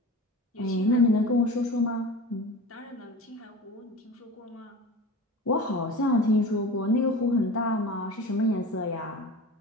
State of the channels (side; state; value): both; normal; correlation 0.34